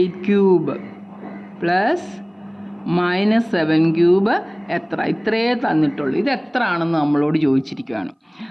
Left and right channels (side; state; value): both; identical; correlation 1.00